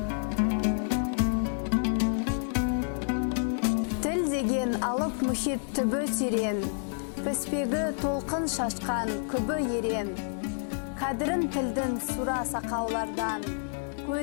Тіл деген алып мұхит түбі терең, піспегі толқын шашқан күбі ерен. Қадірін тілдің сұра сақаулардан,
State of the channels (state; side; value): silent; right; digital silence